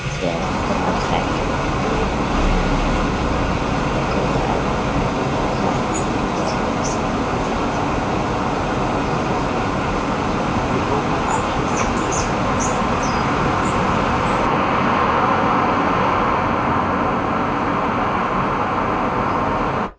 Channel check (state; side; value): identical; both; correlation 1.00